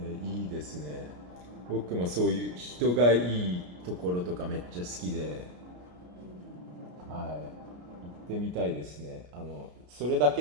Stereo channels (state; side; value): late; left; 33 ms